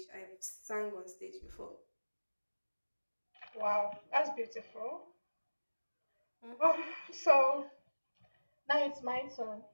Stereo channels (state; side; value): inverted; both; correlation -1.00